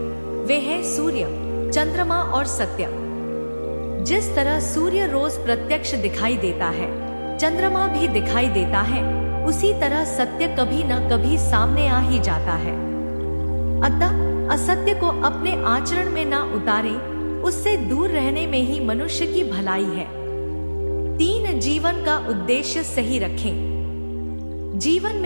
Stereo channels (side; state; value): both; inverted; correlation -1.00